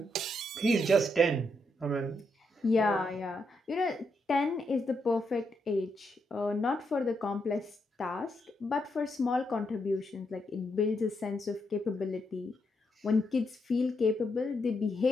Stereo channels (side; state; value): both; normal; correlation 0.80